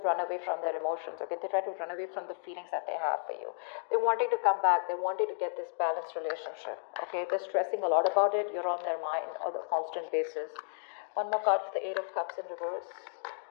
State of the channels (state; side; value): silent; right; digital silence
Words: run away from their emotions, okay? They try to run away from the feelings that they have for you. They're wanting to come back. They're wanting to get this balanced relationship, okay? They're stressing a lot about it. You're on their mind on a constant basis. One more card for the Eight of Cups in reverse.